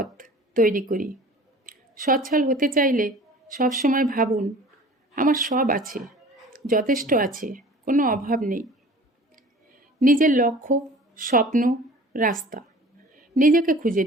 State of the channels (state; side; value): normal; both; correlation 0.45